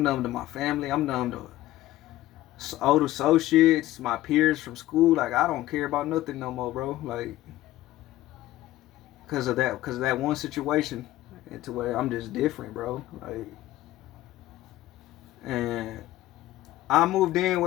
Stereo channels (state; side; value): quieter; right; 15.5 dB